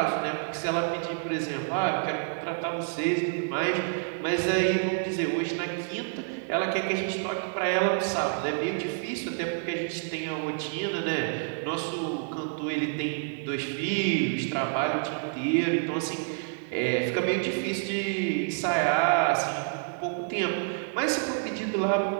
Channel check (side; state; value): left; silent; digital silence